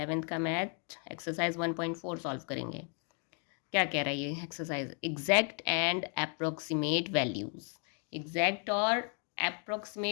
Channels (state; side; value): quieter; right; 39.2 dB